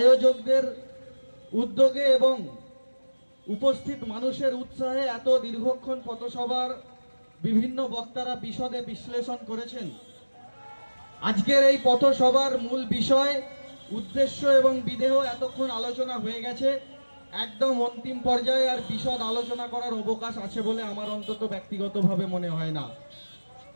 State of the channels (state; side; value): inverted; both; correlation -1.00